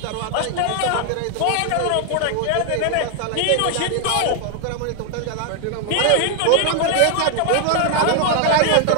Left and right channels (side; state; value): both; different; correlation 0.00